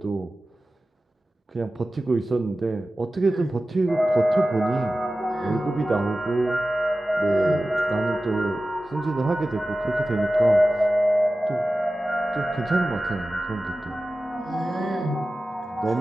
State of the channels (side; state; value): both; normal; correlation 0.95